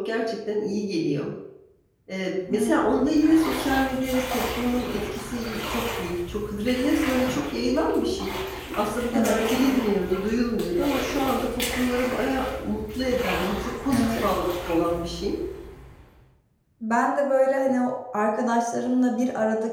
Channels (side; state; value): both; identical; correlation 1.00